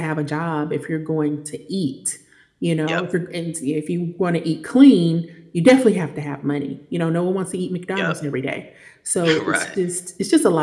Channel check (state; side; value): identical; both; correlation 1.00